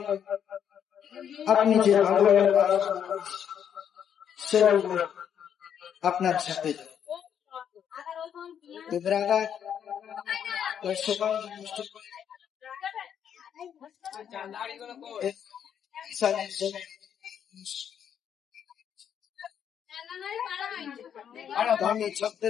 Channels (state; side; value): quieter; right; 8.7 dB